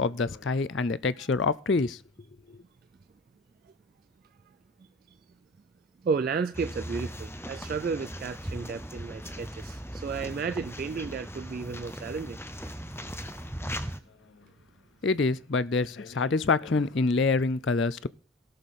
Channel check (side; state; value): both; normal; correlation 0.37